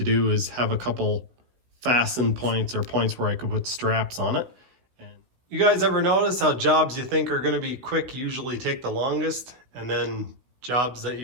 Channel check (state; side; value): late; left; 16 ms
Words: do is have a couple fasten points or points where I could put straps on it. You guys ever notice how jobs you think are going to be quick usually take the longest, and then jobs that